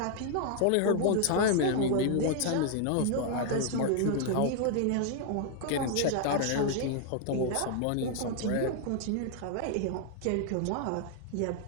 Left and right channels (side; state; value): both; different; correlation 0.00